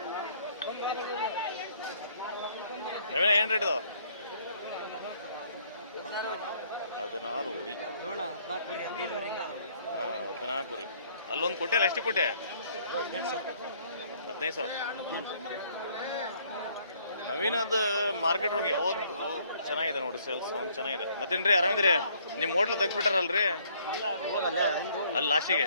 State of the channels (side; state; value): both; inverted; correlation -0.63